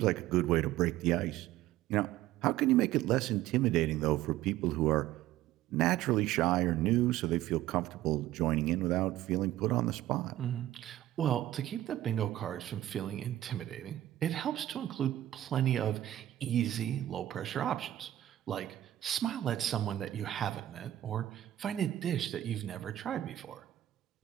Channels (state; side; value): quieter; left; 13.8 dB